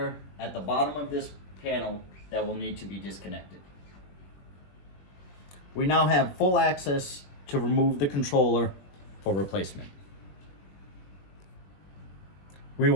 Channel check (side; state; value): right; late; 21 ms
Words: at the bottom of this panel that will need to be disconnected. We now have full access to remove the controller for replacement. We